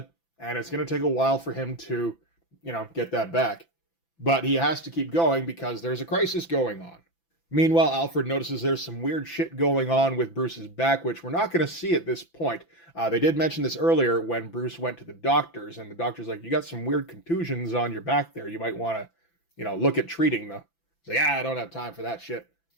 and it's going to take a while for him to, get that back. But he has to keep going because there's a crisis going on. Meanwhile, Alfred notices there's some weird shit going on with Bruce's back, which we're not going to see at this point. They did mention this earlier when Bruce went to the doctors, and the doctor's like, you got some weird contusions on your back there. You might want to, look at treating them. He's like, I don't have time for that shit.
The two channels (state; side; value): late; right; 5.9 ms